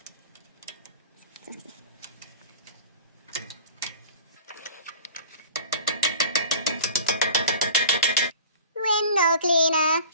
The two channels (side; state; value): both; inverted; correlation -0.40